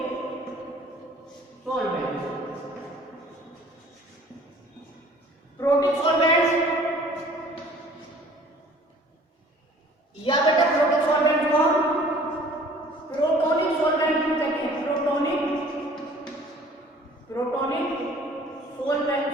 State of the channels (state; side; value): normal; both; correlation 0.51